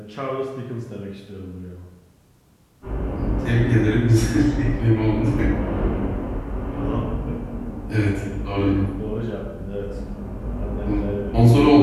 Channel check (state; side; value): identical; both; correlation 1.00